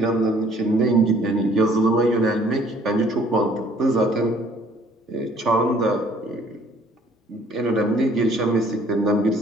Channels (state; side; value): normal; both; correlation 0.58